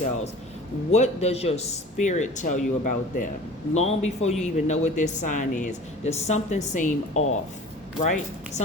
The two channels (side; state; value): both; normal; correlation 0.42